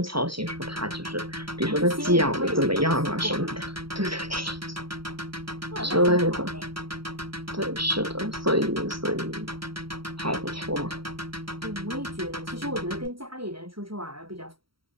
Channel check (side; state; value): left; late; 0.74 ms